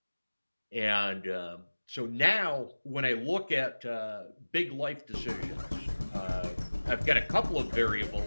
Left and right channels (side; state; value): both; inverted; correlation -1.00